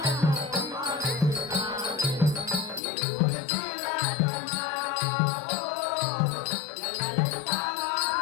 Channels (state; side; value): drops out; right; at 2.8 s